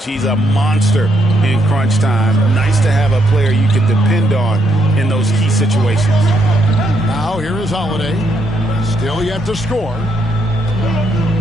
He's a monster in crunch time. Nice to have a player you can depend on in those key situations. Now here is Holiday. Still yet to score.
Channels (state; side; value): normal; both; correlation 0.75